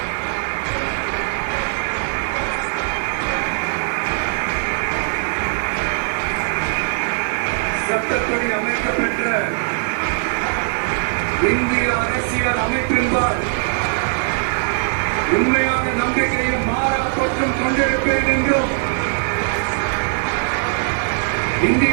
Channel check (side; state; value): left; silent; digital silence